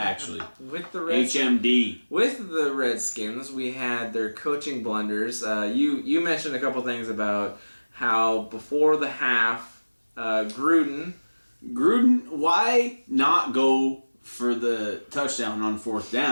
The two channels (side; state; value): both; inverted; correlation -1.00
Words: With the HMD. With the Redskins, we had their coaching blunders. You mentioned a couple things about how before the half, Gruden, why not go for the touchdown on fourth